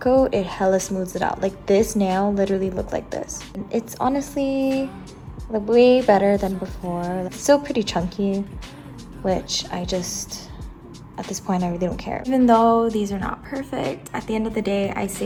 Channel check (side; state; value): both; identical; correlation 1.00